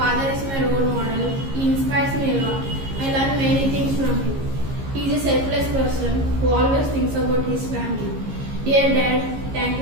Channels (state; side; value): late; left; 15 ms